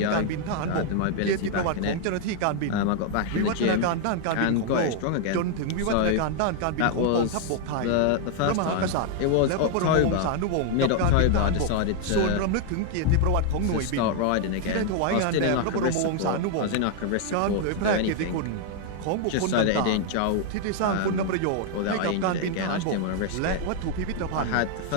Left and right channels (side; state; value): both; different; correlation 0.00